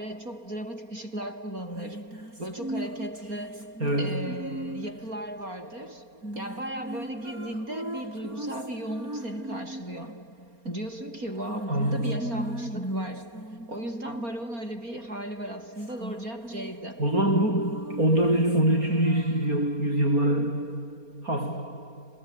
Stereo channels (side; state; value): left; late; 4.3 ms